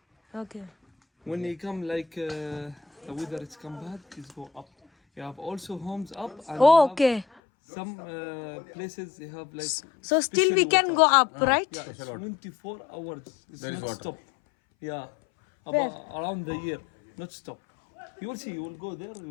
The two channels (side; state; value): right; drops out; at 7.2 s